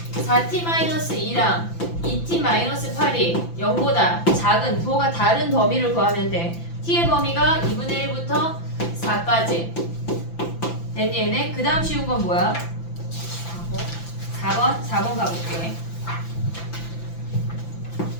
4t-2랑 2t-8이 0보다 작은 부호가 다른 범위를 구하면 돼. t의 범위가 2분의 1부터 4까지. 됐니 얘네? 그 다음 쉬운 건 뭐야? 4번 가볼게.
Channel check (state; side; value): late; right; 5.9 ms